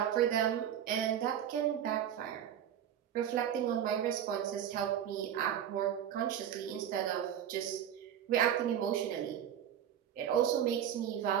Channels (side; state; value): left; quieter; 9.8 dB